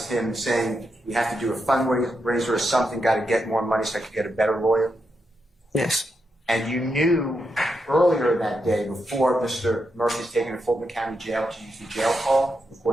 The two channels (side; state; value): both; normal; correlation 0.84